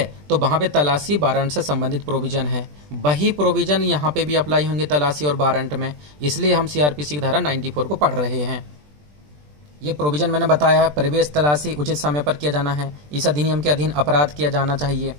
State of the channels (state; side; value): late; left; 20 ms